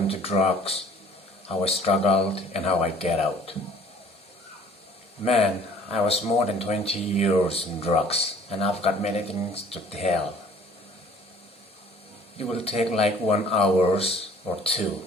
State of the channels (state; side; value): normal; both; correlation 0.53